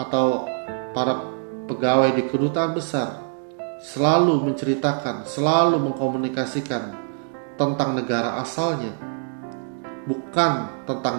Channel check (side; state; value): left; silent; 59 dB below the other